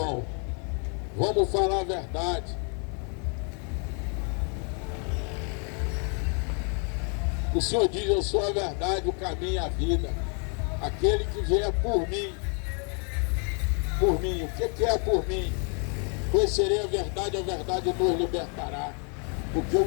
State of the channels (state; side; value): quieter; right; 39.6 dB